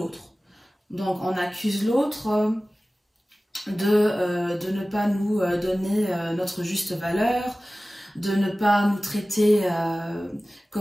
Donc on accuse l'autre de ne pas nous donner notre juste valeur, de ne pas nous traiter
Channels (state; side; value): normal; both; correlation 0.97